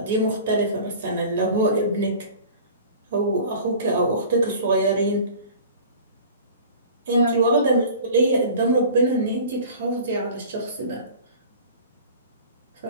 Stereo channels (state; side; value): inverted; both; correlation -0.42